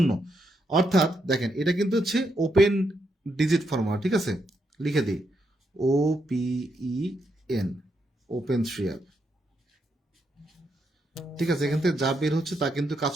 অর্থাৎ দেখেন এটা কিন্তু হচ্ছে ওপেন ডিজিট ফর্মুলা। ঠিক আছে, লিখে দিই OPEN, ওপেন 3 আপ। ঠিক আছে, এখান থেকে যা বের হচ্ছে তা কিন্তু কাজ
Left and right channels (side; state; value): both; normal; correlation 0.80